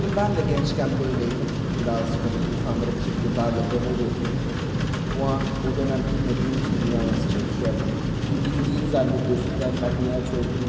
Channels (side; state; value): both; identical; correlation 1.00